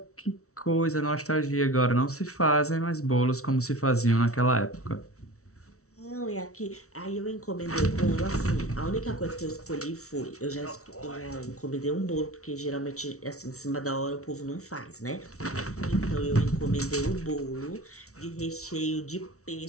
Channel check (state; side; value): late; right; 0.64 ms